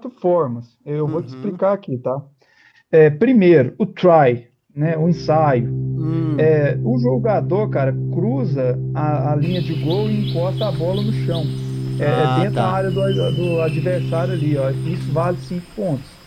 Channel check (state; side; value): identical; both; correlation 1.00